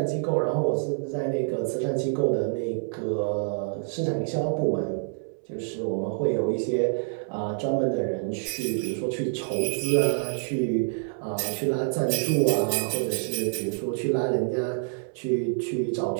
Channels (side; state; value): left; silent; 60 dB below the other